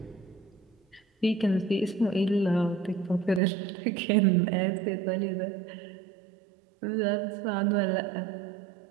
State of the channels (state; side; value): drops out; left; at 3.4 s